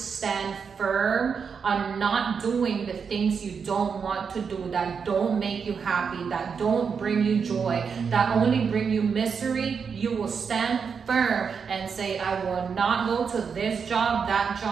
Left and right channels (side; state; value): left; quieter; 6.1 dB